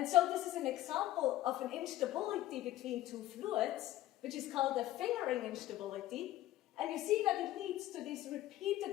so this is an example of an instability between two fluids, which is called a fingering instability, and you see that it leads to these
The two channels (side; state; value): right; quieter; 14.8 dB